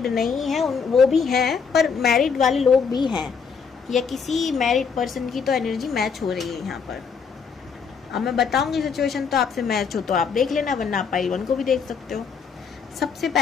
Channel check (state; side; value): quieter; right; 5.9 dB